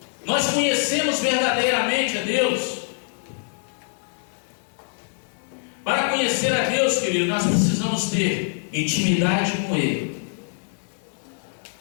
Nós conhecemos verdadeiramente a Deus? Para conhecer a Deus, querido, nós precisamos ter intimidade com Ele.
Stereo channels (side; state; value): right; silent; digital silence